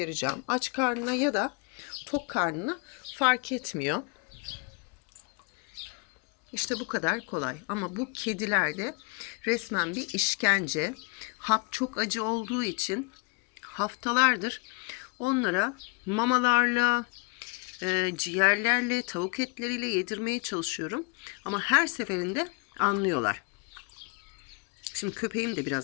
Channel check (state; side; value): quieter; right; 31.6 dB